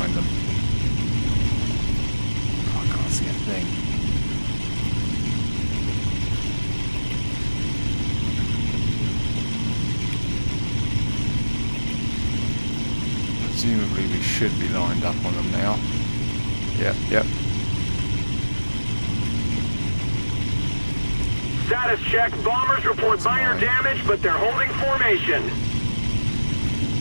them. Oh, I can't see a thing. Presumably we should be lined up on them now. Yep. Status check. Bombers report minor damage, but they're holding formation.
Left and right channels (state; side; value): inverted; both; correlation -1.00